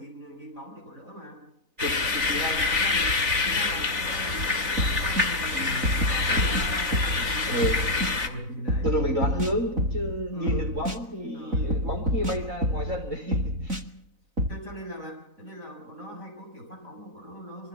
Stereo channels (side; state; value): left; late; 4.0 ms